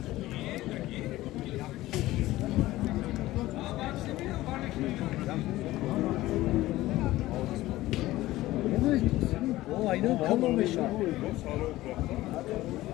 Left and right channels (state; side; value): quieter; right; 16.8 dB